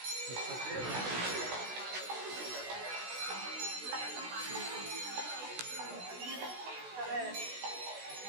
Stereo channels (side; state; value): left; late; 16 ms